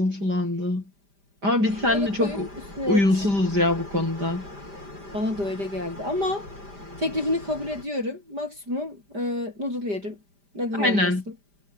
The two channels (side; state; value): left; late; 5.0 ms